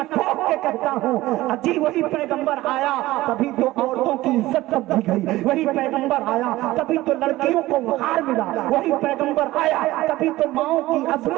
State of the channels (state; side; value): quieter; left; 17.5 dB